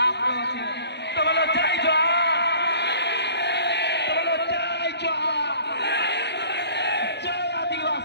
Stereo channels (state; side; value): late; right; 0.50 ms